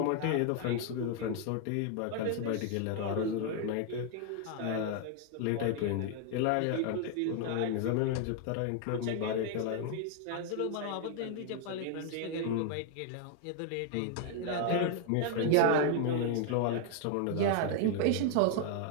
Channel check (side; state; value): both; different; correlation 0.00